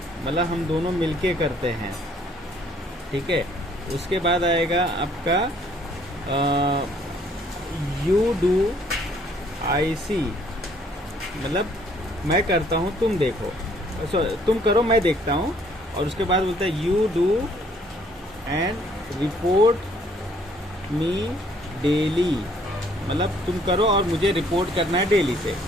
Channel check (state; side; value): normal; both; correlation 0.62